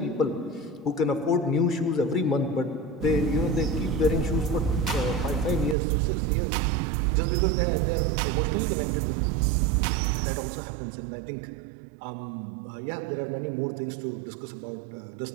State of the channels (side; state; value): left; drops out; at 5.8 s